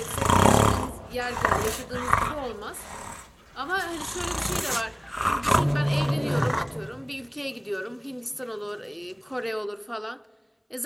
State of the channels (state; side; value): identical; both; correlation 1.00